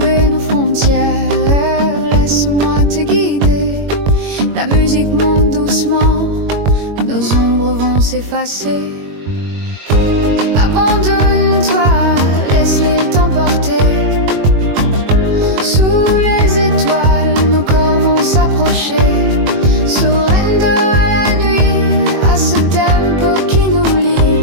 nos frontières, laisse-moi te guider. La musique monte doucement, nos ombres vont s'effacer. Abandonne-toi, laisse l'île t'emporter. Sous les étoiles, nos corps vont s'approcher. Surrender à la nuit, à ce tempo qui nous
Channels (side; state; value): left; late; 21 ms